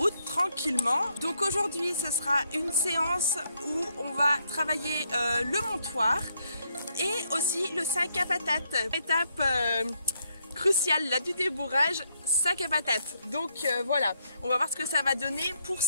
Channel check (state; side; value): inverted; both; correlation -0.76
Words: tranquillement. Donc aujourd'hui ce sera une séance où on va travailler le montoir et aussi le sac à patates. Étape cruciale là du débourrage, sac à patates. Donc voilà, on va voir ce que ça va donner. Pour